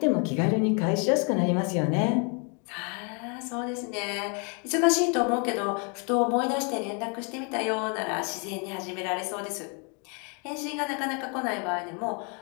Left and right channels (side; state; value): right; quieter; 35.7 dB